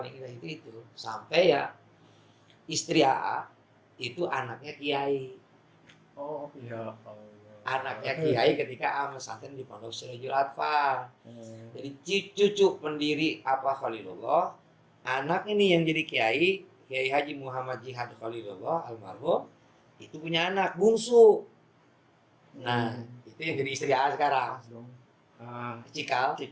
indah itu sampai ya istri itu anaknya kiai. Oh, iya. Anaknya kiai ketika pesantren di Pondok Sirajul Atfal. Jadi cucu pendiri Khalilullah. Anak ini yang jadi Kiai Haji Muhammad Jihad Khalilullah almarhum itu punya anak bungsu. Nah, itu yang jadi istri sekarang. Cikal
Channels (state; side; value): identical; both; correlation 1.00